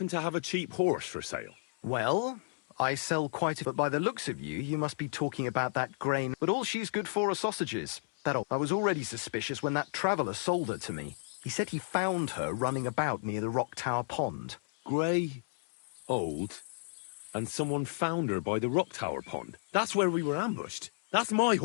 to have a cheap horse for sale? Well, I sell quite a... But by the looks of you, you must be talking about that grain. But all she's good for are sausages. I was already suspicious when that traveller sold her to me. He said he found her running about near the Rock Tower Pond. Grey, old, and someone found her by the Rock Tower Pond. That's where we were ambushed. That's my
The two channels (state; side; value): silent; right; 56 dB below the other